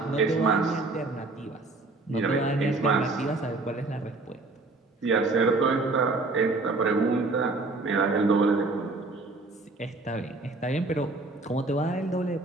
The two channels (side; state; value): left; quieter; 3.4 dB